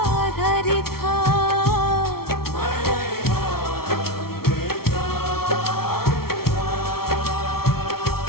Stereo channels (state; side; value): late; right; 0.94 ms